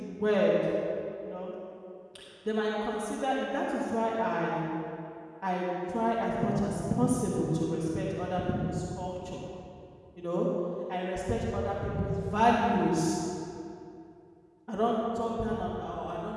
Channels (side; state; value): both; identical; correlation 1.00